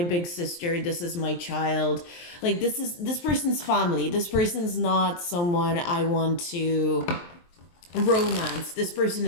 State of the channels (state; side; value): late; right; 23 ms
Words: sister, this is my child. Like this person's family. This person's not someone I want to romance. This person